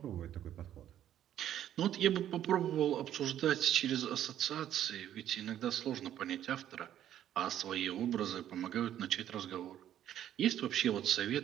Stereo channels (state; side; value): quieter; left; 11.2 dB